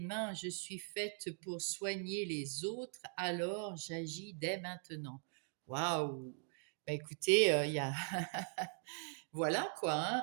je suis faite pour soigner les autres, alors j'agis dès maintenant. Waouh! Ben écoutez, il y a voilà quoi,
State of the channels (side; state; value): left; silent; 51 dB below the other